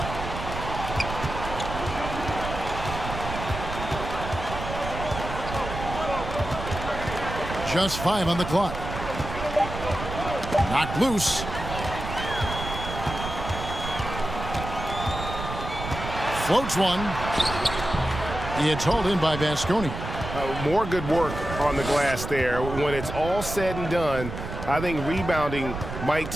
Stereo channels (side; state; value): right; noise; rumble, 7 dB below the sound